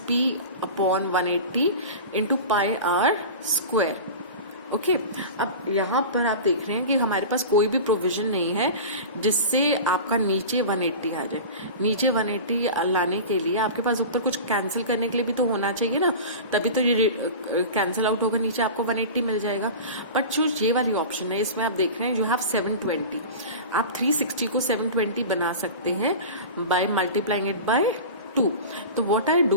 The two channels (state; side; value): inverted; both; correlation -0.32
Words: p upon 180 into pi r square. Okay, अब यहाँ पर आप देख रहे हैं कि हमारे पास कोई भी प्रोविजन नहीं है जिससे आपका नीचे 180 आ जाए. नीचे 180 लाने के लिए आपके पास ऊपर कुछ कैंसिल करने के लिए भी तो होना चाहिए ना, तभी तो ये कैंसिल आउट होगा, नीचे आपको 180 मिल जाएगा. बट जो ये वाली ऑप्शन है इसमें आप देख रहे हैं यू हैव 720. आप 360 को 720 बना सकते हैं बाय मल्टीप्लाइंग इट बाय 2. तो व्हाट आई